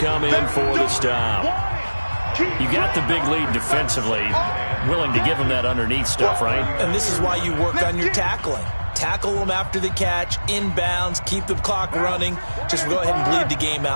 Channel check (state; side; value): inverted; both; correlation -1.00